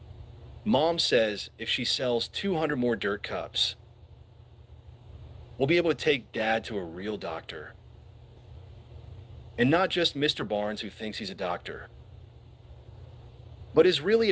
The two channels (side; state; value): both; identical; correlation 1.00